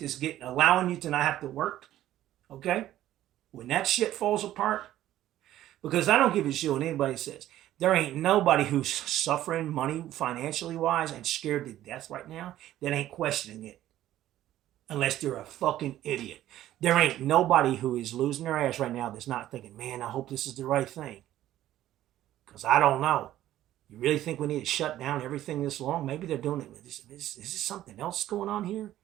that's allowing you to not have to work, okay? When that shit falls apart, because I don't give a shit what anybody says. There ain't nobody who's suffering money financially wise and scared to death right now that ain't questioning it. Unless they're a fucking idiot. There ain't nobody who is losing their ass right now that's not thinking, man, I hope this is the right thing. Because I don't know. You really think we need to shut down everything this long? Maybe they're doing it. Is this something else going on here?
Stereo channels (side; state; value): left; quieter; 13.4 dB